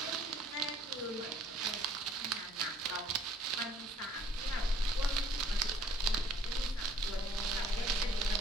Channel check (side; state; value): both; normal; correlation 0.59